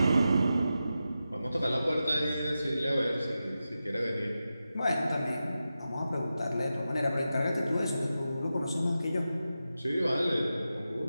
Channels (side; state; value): both; inverted; correlation -0.92